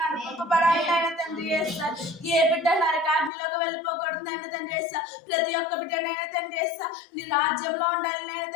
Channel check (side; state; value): right; drops out; at 3.3 s